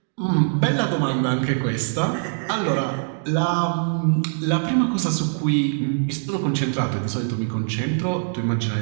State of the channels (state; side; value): silent; left; 64 dB below the other